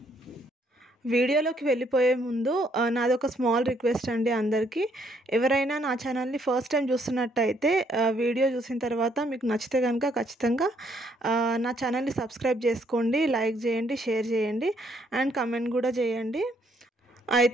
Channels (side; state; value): both; normal; correlation 0.69